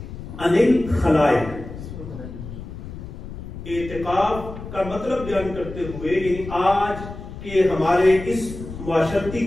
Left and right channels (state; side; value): noise; left; rumble, 11 dB below the sound